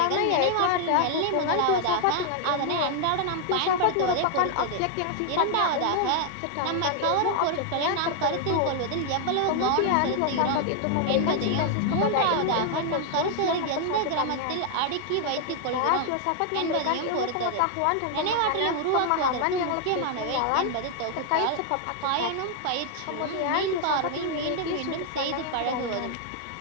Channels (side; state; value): both; different; correlation 0.00